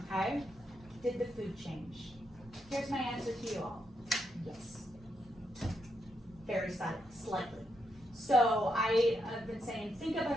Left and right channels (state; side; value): normal; both; correlation 0.81